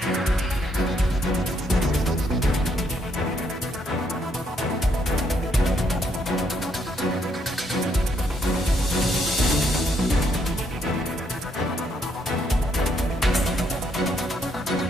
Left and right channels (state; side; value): normal; both; correlation 0.73